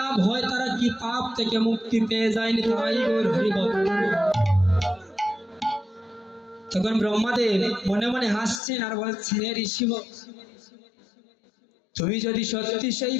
হয়? তারা কি পাপ থেকে মুক্তি পেয়ে যায়নি? তাই গৌর হরি বল। তখন ব্রহ্মাদেব মনে মনে হাসছেন আর বলছেন, হে ঋষি, তুমি যদি সত্যি সেই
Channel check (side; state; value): right; drops out; at 8.6 s